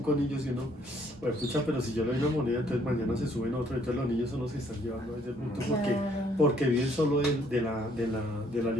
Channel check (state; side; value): normal; both; correlation 0.65